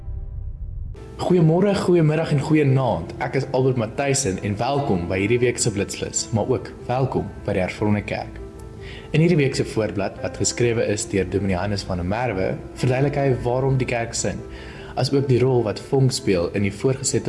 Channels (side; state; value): both; identical; correlation 1.00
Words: Goeiemôre, goeiemiddag en goeienaand. Ek is Albert Matthijssen en welkom by hierdie week se Blitsflits, maar ook welkom by die Hervormde Kerk. In hierdie week se voorblad wat geskrewe is deur Dominee Hannes van der Merwe, verduidelik hy waarom die kerk sing, as ook die rol wat vonk speel in die